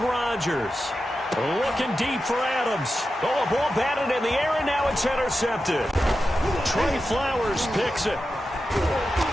Looking deep for Adams. Oh, a ball batted in the air, and now it's intercepted. Trey Flowers picks it.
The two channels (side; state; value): both; normal; correlation 0.91